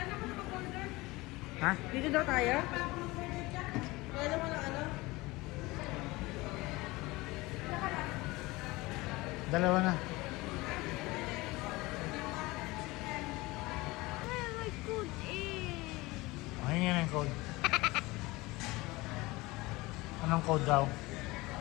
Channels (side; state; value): right; quieter; 21.5 dB